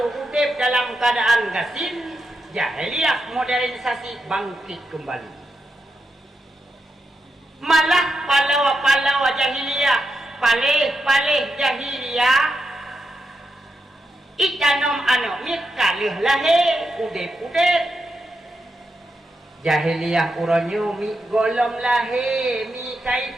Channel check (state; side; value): normal; both; correlation 0.86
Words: dalam keadaan gasin, jahiliyah modernisasi bangkit kembali. Malah pahlawa-pahlawa jahiliyah, palih-palih jahiliyah ikanom anak mikalih lahir udip-udip. Jahiliyah uranyo mi golom lahir mi